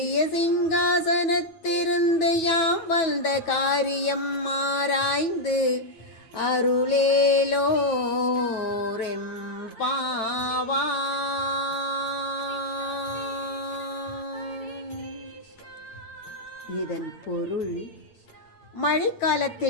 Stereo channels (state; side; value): late; right; 9.2 ms